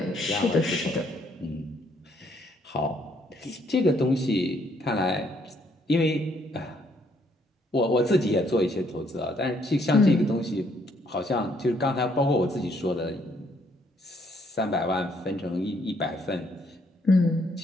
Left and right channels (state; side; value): normal; both; correlation 0.69